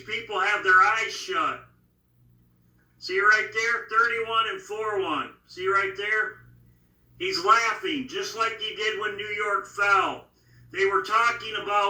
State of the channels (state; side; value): identical; both; correlation 1.00